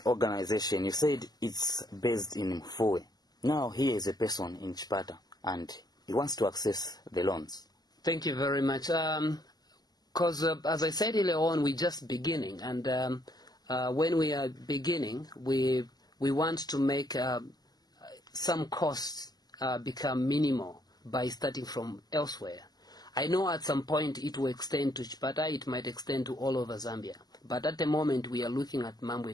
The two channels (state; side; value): late; right; 0.20 ms